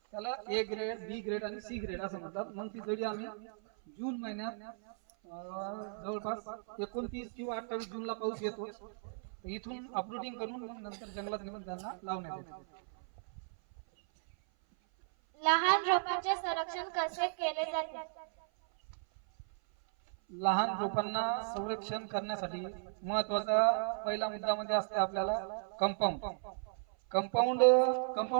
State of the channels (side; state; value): left; silent; 54 dB below the other